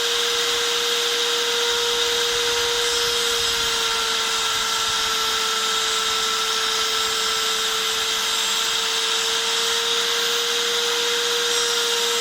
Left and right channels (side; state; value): both; identical; correlation 1.00